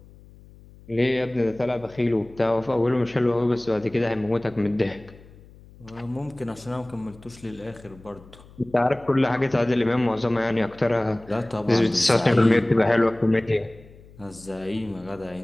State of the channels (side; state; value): left; noise; hum, 23 dB below the sound